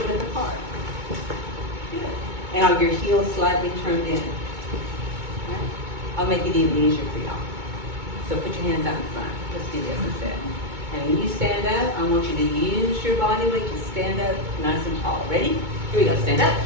width apart? Good. And are your heels slightly turned in? Right? I'll make it even easier for y'all. So put your hands out in front. Let's do this instead. And when you stand up, I want you to use your body weight to stand up nice and tall. Ready? Here we go. Stand up.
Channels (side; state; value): left; late; 2.2 ms